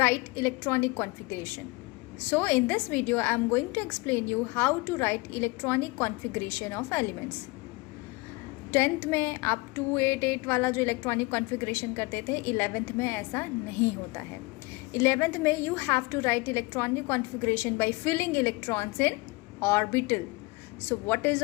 electronic configuration. So in this video, I am going to explain you how to write electronic configuration of elements. 10th में आप 288 वाला जो electronic configuration करते थे, 11th में ऐसा नहीं होता है. 11th में you have to write electronic configuration by filling electrons in orbital. So what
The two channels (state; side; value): quieter; right; 24.9 dB